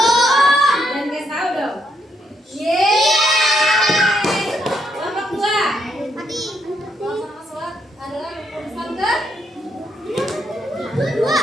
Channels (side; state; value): both; normal; correlation 0.76